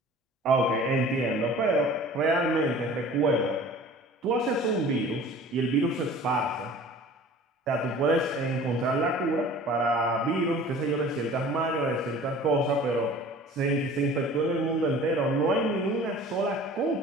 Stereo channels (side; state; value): both; normal; correlation 0.45